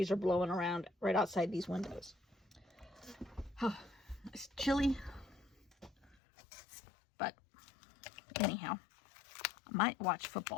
are blowing around right outside these windows. Oh, it's chilly. But anyhow, I might watch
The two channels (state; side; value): drops out; right; at 6.2 s